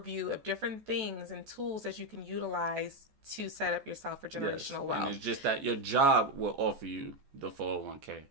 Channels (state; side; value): late; left; 14 ms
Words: of different things and tools that you can utilize to set up yourself for generational wealth. And it's just that your job will offer you the 401k.